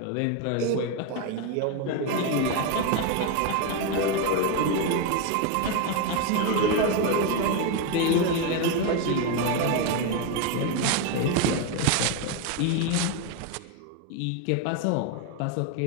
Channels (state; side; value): different; both; correlation 0.02